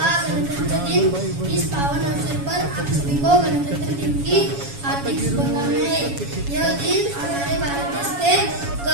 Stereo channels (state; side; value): late; left; 7.2 ms